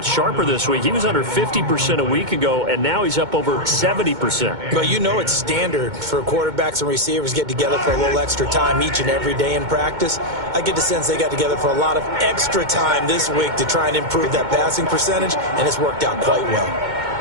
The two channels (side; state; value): left; late; 2.2 ms